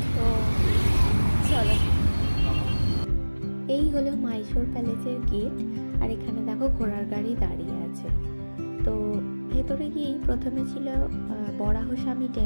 তো চলো, এই হলো মাইশোর প্যালেসের গেট। আর এখানে দেখো ঘোড়ার গাড়ি দাঁড়িয়ে আছে। তো ভেতরে গিয়েই প্রথমে ছিল বরাহস্বামী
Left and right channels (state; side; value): inverted; both; correlation -1.00